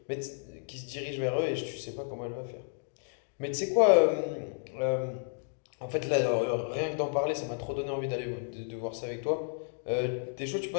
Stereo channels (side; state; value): right; silent; digital silence